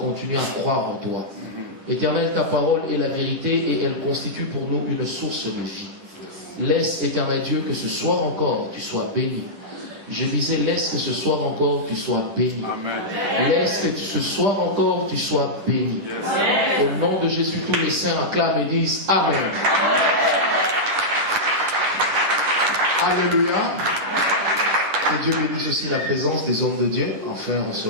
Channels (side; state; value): left; late; 10 ms